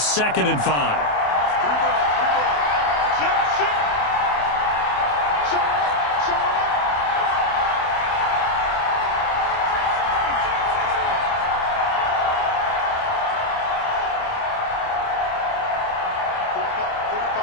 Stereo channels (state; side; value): late; right; 28 ms